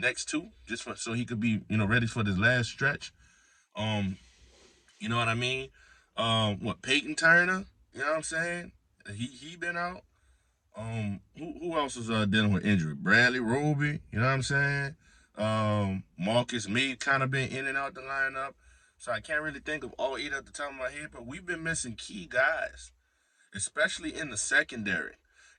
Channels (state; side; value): identical; both; correlation 1.00